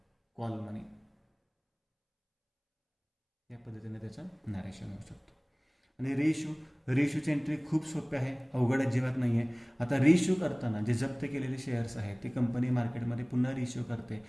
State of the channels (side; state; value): both; identical; correlation 1.00